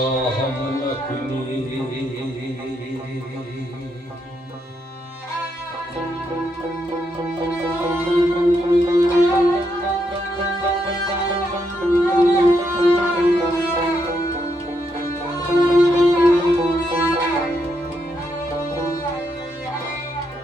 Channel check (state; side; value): normal; both; correlation 0.79